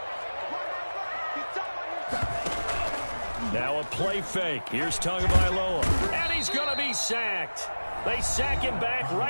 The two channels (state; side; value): inverted; both; correlation -1.00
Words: Now a play fake. Here's Tagovailoa. And he's going to be sacked. They sack him back